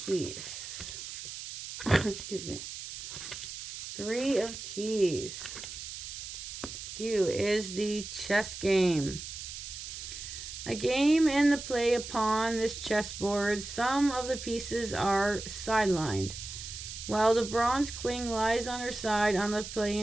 Keys. Excuse me. 3 of Keys. Q is the chess game. A game in the play upon this chessboard. Some of the pieces are sidelined, while the bronze queen lies on her side on the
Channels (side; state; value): right; noise; hiss, 9 dB below the sound